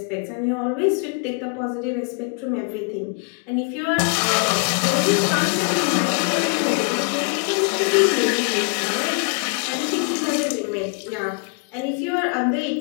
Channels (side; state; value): right; quieter; 34.9 dB